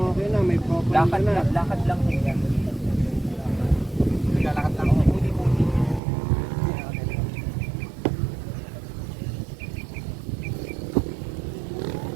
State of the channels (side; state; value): left; drops out; at 6.0 s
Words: okay na. May proper Lakad na. lakad lang yan. Naglalakad lang ako. Muli-muli.